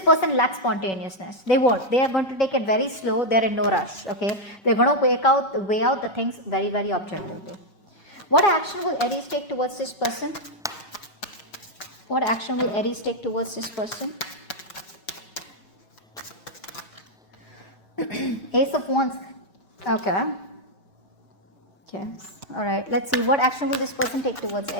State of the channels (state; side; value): late; right; 5.3 ms